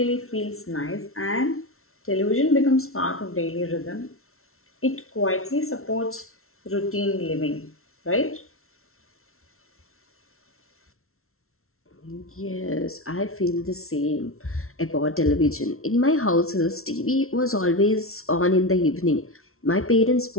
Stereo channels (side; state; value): right; late; 0.62 ms